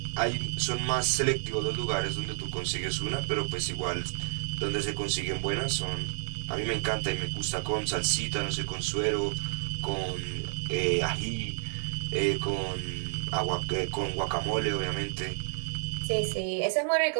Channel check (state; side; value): silent; left; digital silence